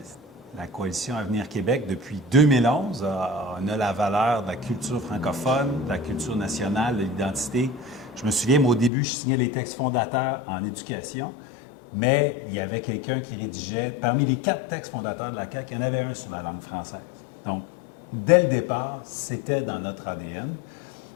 La coalition Avenir Québec, depuis 2011, on a la valeur de la culture francophone, de la culture nationale, de l'identité. Je me souviens, moi, au début, je signais les textes fondateurs en éducation. Mais il y avait quelqu'un qui rédigeait, parmi les 4 textes fondateurs de la CAQ, il y en avait un sur la langue française. Donc, dès le départ, c'était dans notre ADN.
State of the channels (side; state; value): right; drops out; at 8.9 s